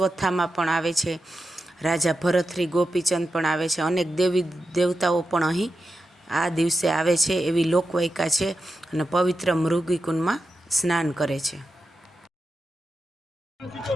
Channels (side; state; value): both; normal; correlation 0.89